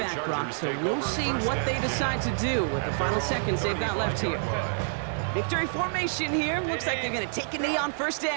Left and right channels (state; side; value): silent; left; digital silence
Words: Brock, so we'll see what they decide to do with the final seconds they've got left here. Victory formation here. Looks like they're going to take a knee on first